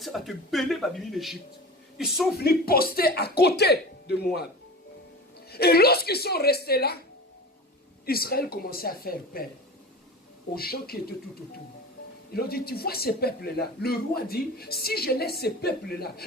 ça va te béler, va venir l'Égypte. Ils sont venus poster à côté de Moab. Et lorsqu'ils sont restés là, Israël commençait à faire peur aux gens qui étaient tout autour. Ils ont dit, tu vois ces peuples-là? Le roi dit, si je laisse ces peuples-là,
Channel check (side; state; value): both; normal; correlation 0.32